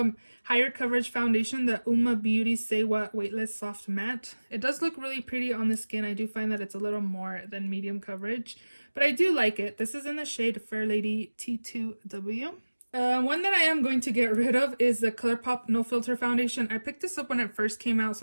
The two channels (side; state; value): both; inverted; correlation -1.00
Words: higher coverage foundation, the Uma Beauty Say What Weightless Soft Matte. It does look really pretty on the skin. I do find that it's a little more than medium coverage, but I do like it. This is in the shade Fair Lady T2W. One that I am going to get rid of is the Colourpop No Filter Foundation. I picked this up when it first came out,